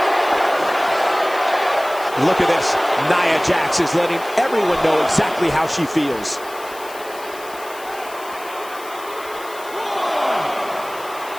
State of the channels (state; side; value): noise; left; hiss, 18 dB below the sound